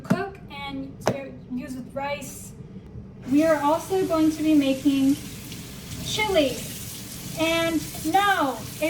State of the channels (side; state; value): both; identical; correlation 1.00